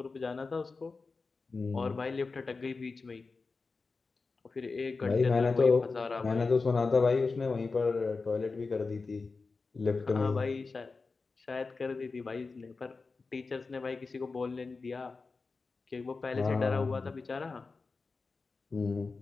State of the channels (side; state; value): right; quieter; 4.2 dB